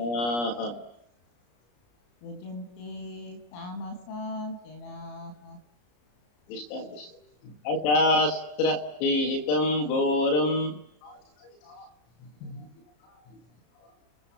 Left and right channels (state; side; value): late; right; 34 ms